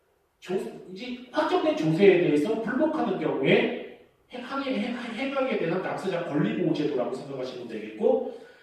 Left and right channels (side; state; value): both; identical; correlation 1.00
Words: 이제 확정된 조세에 대해서 불복하는 경우에 행하게 되는 납세자 권리보호제도라고 생각하시면 되겠고